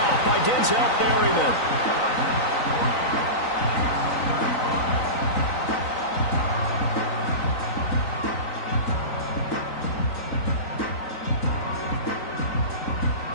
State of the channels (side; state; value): right; late; 3.9 ms